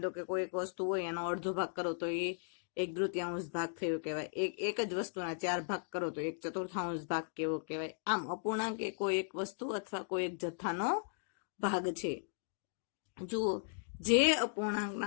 લો કે કોઈ એક વસ્તુ હોય, એનો અડધો ભાગ કરો તો એ 1/3 ભાગ થયો કહેવાય. એક જ વસ્તુના 4 ભાગ કરો તો 1/4 ભાગ કેવો કહેવાય. આમ અપૂર્ણાંક એ કોઈ એક વસ્તુ અથવા કોઈ એક જથ્થાનો ભાગ છે. જુઓ, જે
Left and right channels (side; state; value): right; silent; digital silence